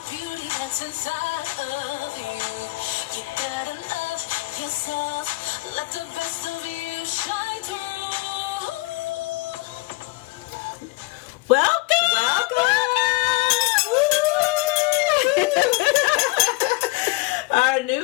beauty that's inside of you. You gotta love yourself. Let the best of you shine through. Our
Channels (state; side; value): quieter; right; 22.3 dB